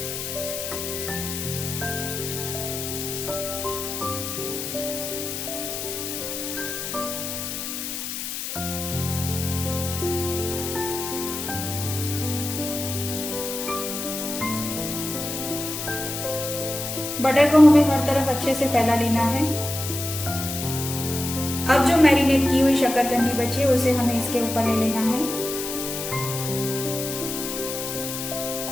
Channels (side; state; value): left; noise; hiss, 5 dB below the sound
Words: बटर को हमें हर तरफ अच्छे से फैला लेना है। अब जो मैरिनेट की हुई शक्करकंदी बची है उसे हमें इसके ऊपर ले लेना है।